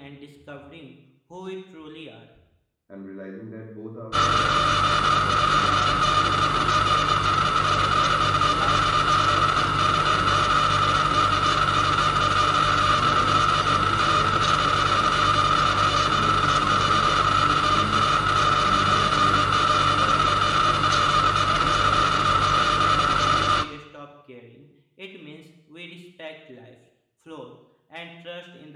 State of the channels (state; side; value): identical; both; correlation 1.00